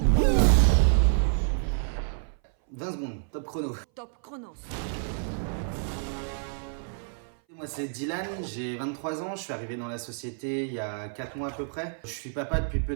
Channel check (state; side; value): silent; left; 58 dB below the other